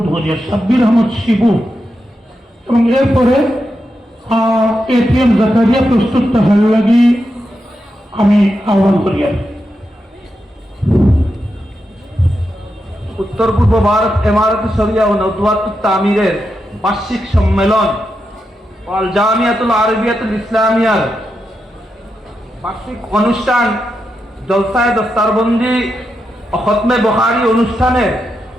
করি, সাব্বির আহমদ শিবু, এবং এরপরে এটিএম জাকারিয়া প্রস্তুত থাকার লাগি আমি আহ্বান করি। উত্তর পূর্ব ভারত ইমারত শরিয়া ও নদওয়াতুত তামিরের বার্ষিক সম্মেলন আল জামিয়াতুল আরবিয়াতুল ইসলামিয়ার বার্ষিক অনুষ্ঠান জলসায়ে দস্তারবন্দি ও খতমে বুখারী অনুষ্ঠানের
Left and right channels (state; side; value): normal; both; correlation 0.86